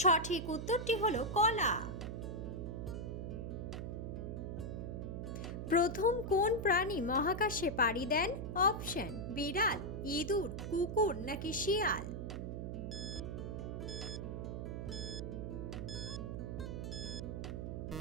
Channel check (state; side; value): noise; right; hum, 5 dB below the sound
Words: সঠিক উত্তরটি হলো কলা। প্রথম কোন প্রাণী মহাকাশে পাড়ি দেন? অপশন বিড়াল, ইঁদুর, কুকুর নাকি শিয়াল?